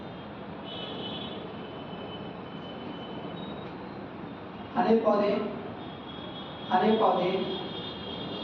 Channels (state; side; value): identical; both; correlation 1.00